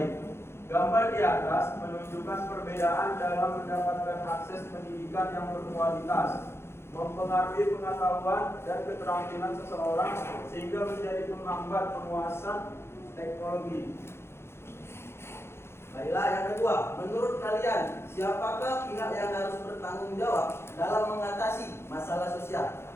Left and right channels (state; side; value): late; right; 0.12 ms